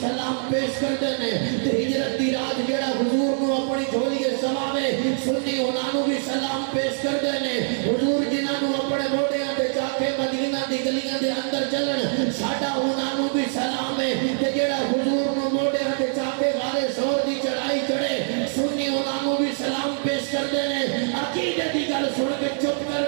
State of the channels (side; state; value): left; silent; digital silence